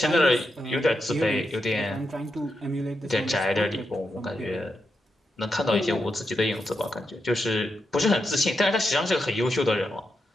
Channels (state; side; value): normal; both; correlation 0.85